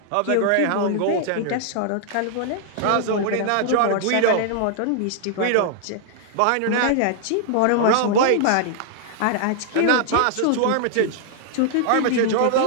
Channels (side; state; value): both; different; correlation -0.01